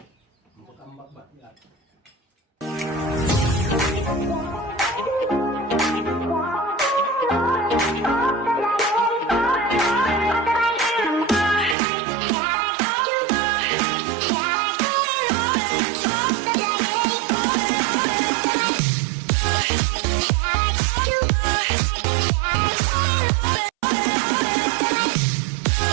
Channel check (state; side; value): drops out; left; at 11.8 s